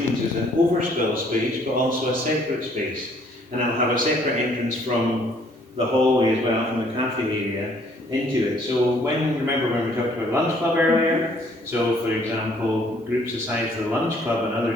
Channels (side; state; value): both; normal; correlation 0.62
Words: So it's an overspill space but also a separate space. And I'll have a separate entrance from the hallway as well, from the cafe area into it. So remember when we talked about lunch club earlier? So for example, groups aside for the lunch club and